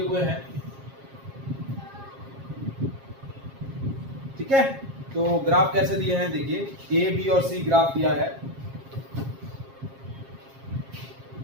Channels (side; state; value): left; late; 7.4 ms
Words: हुए हैं. ठीक है, तो ग्राफ कैसे दिए हैं देखिए, ए बी और सी ग्राफ दिया है.